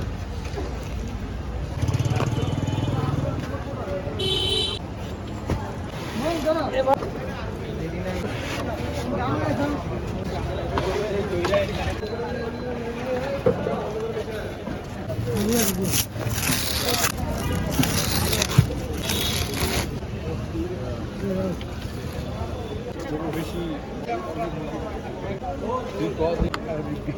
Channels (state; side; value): identical; both; correlation 1.00